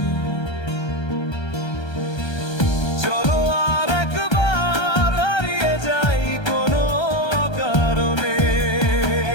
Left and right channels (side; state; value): right; late; 1.3 ms